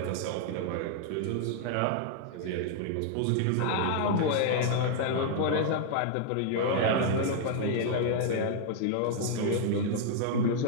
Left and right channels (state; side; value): different; both; correlation 0.00